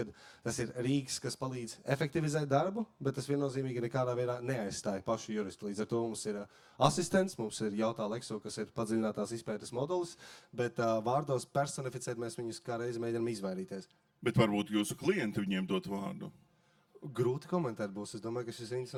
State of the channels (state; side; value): identical; both; correlation 1.00